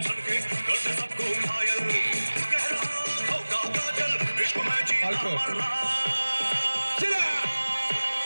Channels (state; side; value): inverted; both; correlation -1.00